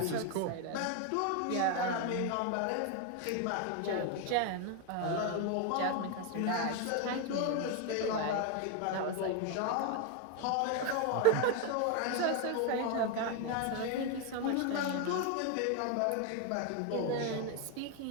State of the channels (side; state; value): both; different; correlation 0.01